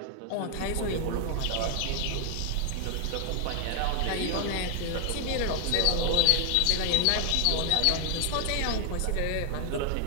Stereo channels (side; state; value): both; different; correlation 0.00